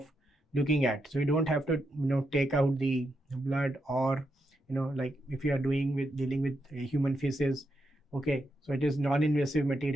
looking at. So you don't have to take out the blood, or like if you are dealing with human feces, okay, so it is non-invasive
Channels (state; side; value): normal; both; correlation 0.83